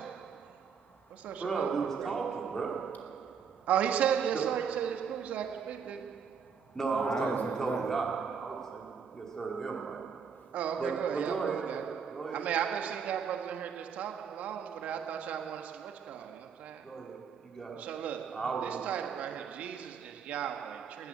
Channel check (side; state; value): left; quieter; 6.6 dB